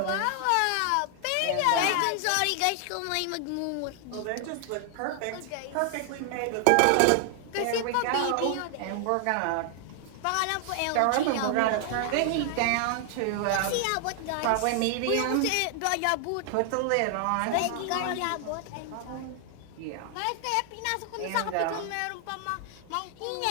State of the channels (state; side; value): different; both; correlation 0.00